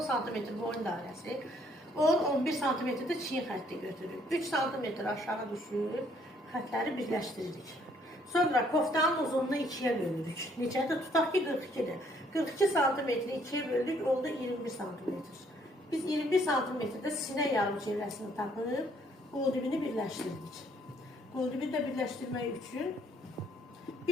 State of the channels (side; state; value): both; normal; correlation 0.65